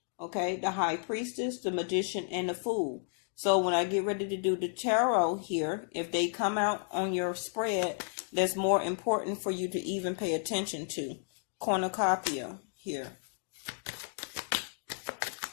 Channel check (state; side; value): silent; right; digital silence